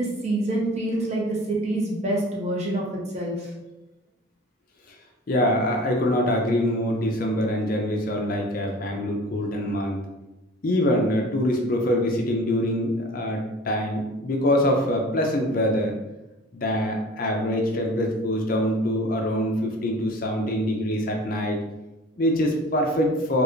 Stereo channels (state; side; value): normal; both; correlation 0.43